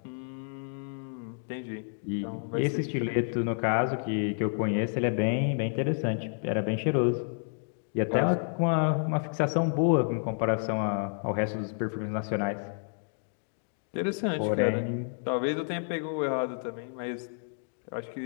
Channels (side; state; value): right; silent; digital silence